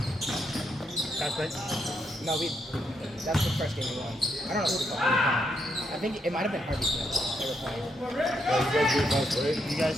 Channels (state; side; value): normal; both; correlation 0.79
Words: right. No, that's the first game we won. I don't know who the fuck we were playing. I think it might have been Harvey Smith. They were playing. You